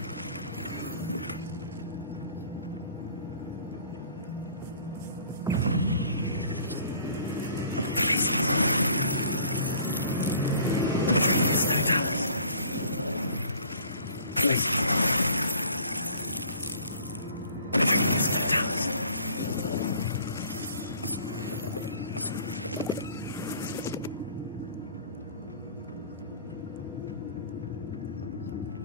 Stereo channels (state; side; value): inverted; both; correlation -0.52